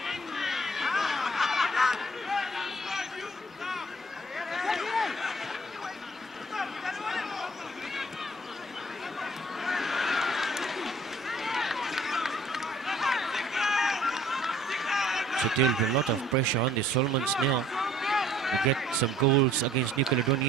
So there will be a lot of pressure on the Solomons now to get some goals against New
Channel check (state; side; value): normal; both; correlation 0.56